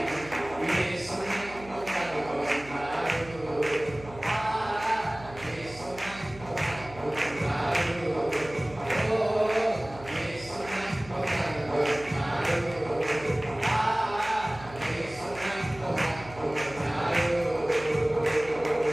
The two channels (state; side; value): noise; right; hum, 18 dB below the sound